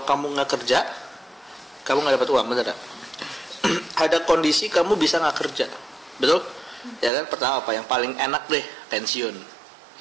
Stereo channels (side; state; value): left; drops out; at 7.1 s